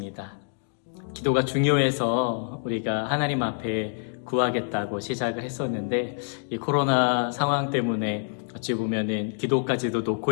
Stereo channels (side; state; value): right; silent; 61 dB below the other